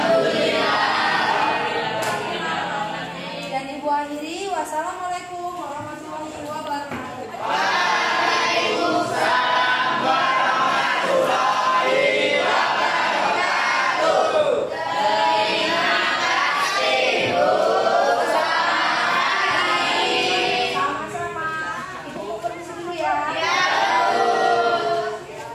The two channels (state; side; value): identical; both; correlation 1.00